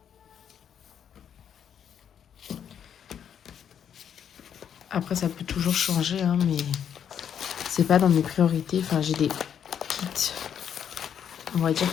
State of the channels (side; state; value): right; quieter; 8.6 dB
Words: Après, ça peut toujours changer, hein, mais c'est pas dans mes priorités. Enfin, j'ai des kits, on va dire,